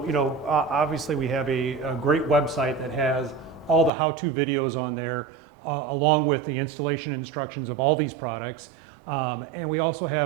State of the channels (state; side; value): drops out; left; at 3.9 s